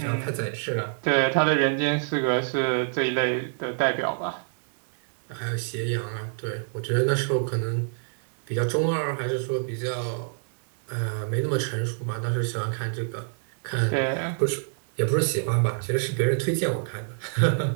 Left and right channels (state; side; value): silent; left; digital silence